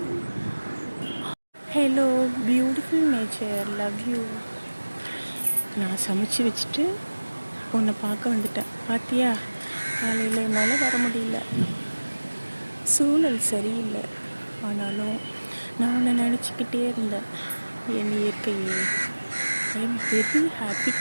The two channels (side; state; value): both; inverted; correlation -1.00